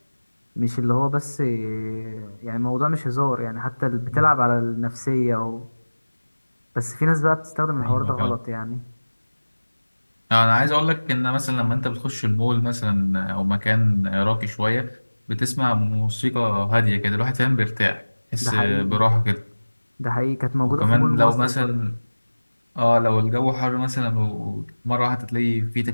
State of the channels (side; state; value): both; inverted; correlation -1.00